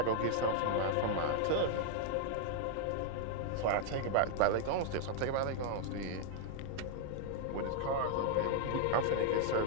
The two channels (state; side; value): different; both; correlation 0.00